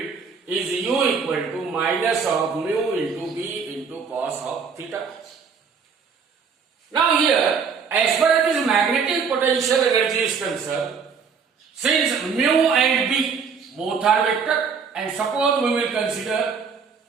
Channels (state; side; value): quieter; left; 5.9 dB